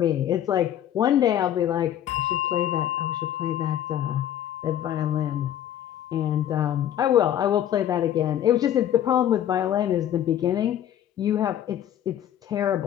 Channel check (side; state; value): right; quieter; 10.9 dB